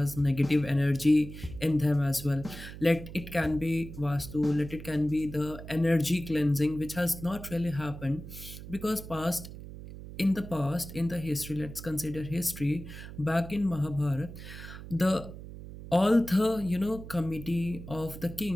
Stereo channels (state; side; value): noise; right; hum, 12 dB below the sound